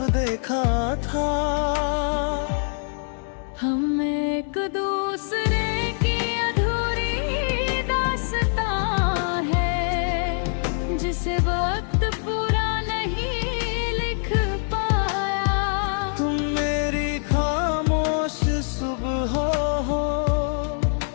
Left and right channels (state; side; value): silent; right; 63 dB below the other